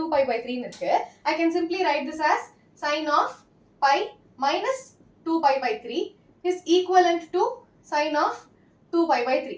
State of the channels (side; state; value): both; identical; correlation 1.00